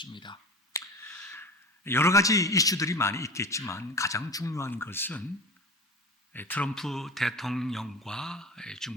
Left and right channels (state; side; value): normal; both; correlation 0.33